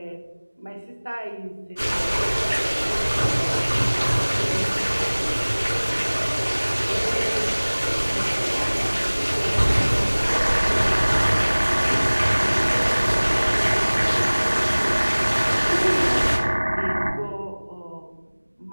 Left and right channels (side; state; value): both; inverted; correlation -1.00